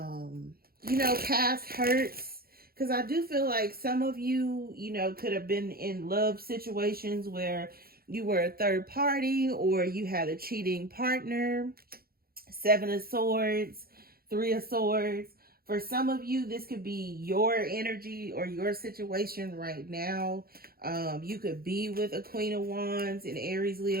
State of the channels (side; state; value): left; late; 0.44 ms